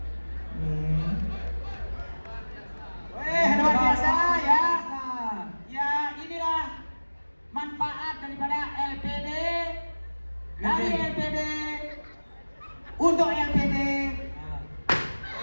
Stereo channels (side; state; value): both; inverted; correlation -1.00